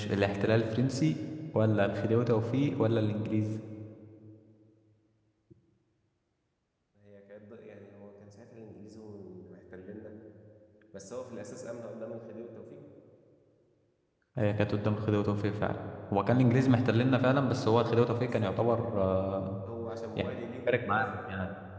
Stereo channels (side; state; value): both; identical; correlation 1.00